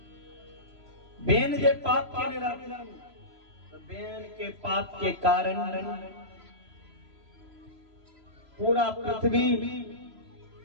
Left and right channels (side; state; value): left; late; 3.0 ms